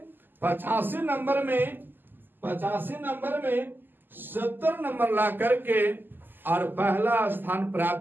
85 नंबर में 70 नंबर ला करके और पहला स्थान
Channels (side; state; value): left; late; 0.092 ms